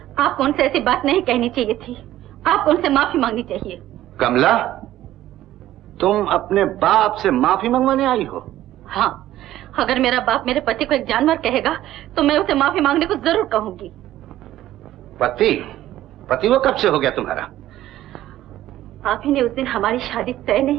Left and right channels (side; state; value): left; quieter; 13.9 dB